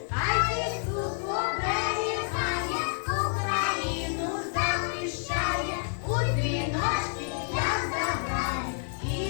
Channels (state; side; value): silent; right; 58 dB below the other